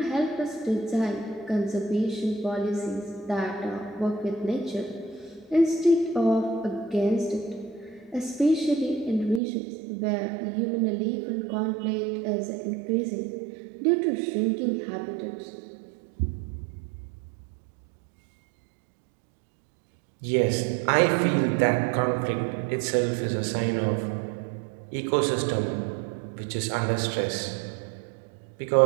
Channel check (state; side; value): drops out; left; at 9.4 s